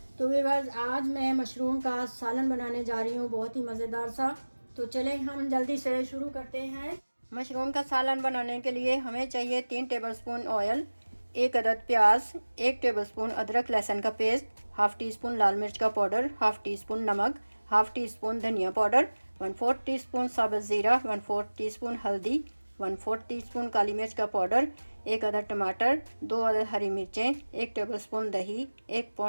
तो व्यूअर्स, आज मैं मशरूम का सालन बनाने जा रही हूँ, बहुत ही मज़ेदार सा। तो चलें हम जल्दी से शुरू करते हैं। मशरूम का सालन बनाने के लिए हमें चाहिए 3 टेबलस्पून ऑयल, 1 अदद प्याज, 1 टेबलस्पून अदरक लहसुन का पेस्ट, हाफ़ टी स्पून लाल मिर्च का पाउडर, हाफ़ टी स्पून नमक, हाफ़ टी स्पून धनिया पाउडर, 1/4 टीस्पून साबुत ज़ीरा, 1/4 टीस्पून हल्दी, 1/4 टीस्पून काली मिर्च का पाउडर, 1 अदद टमाटर, 2 अदद हरी मिर्चें, 1 टेबलस्पून दही, 1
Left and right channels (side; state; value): both; inverted; correlation -1.00